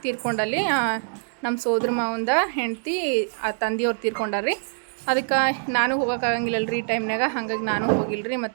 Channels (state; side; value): silent; left; digital silence